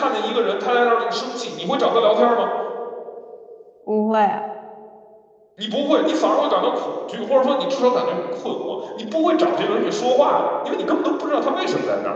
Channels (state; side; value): identical; both; correlation 1.00